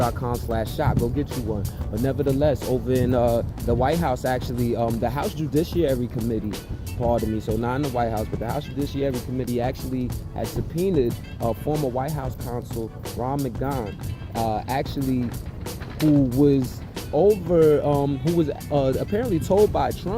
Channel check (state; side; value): identical; both; correlation 1.00